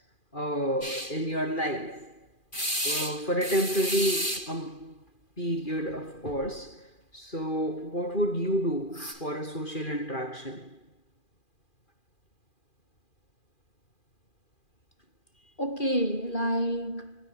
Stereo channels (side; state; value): right; late; 2.4 ms